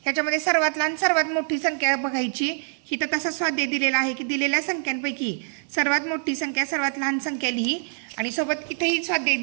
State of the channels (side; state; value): left; silent; digital silence